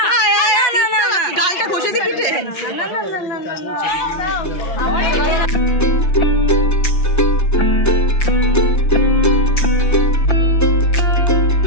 আয় আয় না না না গালটা ঘষে দি পিঠে না না না না না না আমার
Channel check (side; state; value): right; late; 5.8 ms